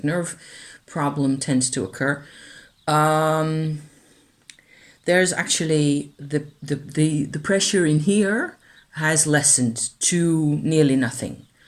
nerve problem tends to occur, there's actually the pressure in here has lessened to nearly nothing.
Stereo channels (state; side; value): identical; both; correlation 1.00